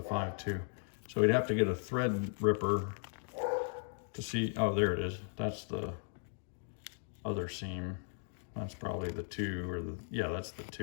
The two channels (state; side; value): silent; right; digital silence